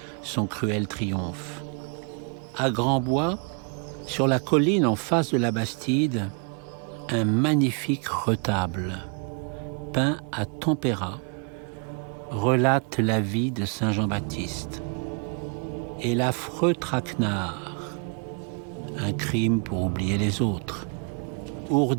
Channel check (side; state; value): left; quieter; 38.6 dB